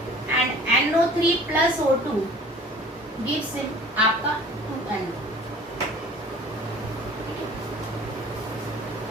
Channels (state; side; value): normal; both; correlation 0.47